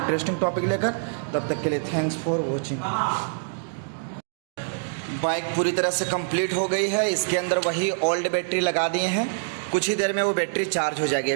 टॉपिक लेकर। तब तक के लिए थैंक्स फॉर वॉचिंग। बाइक पूरी तरह से कंप्लीट हो गई है। इसके अंदर वही ओल्ड बैटरी लगा दिए हैं, कुछ ही देर में वो बैटरी चार्ज हो जाएगी।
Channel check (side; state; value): left; silent; digital silence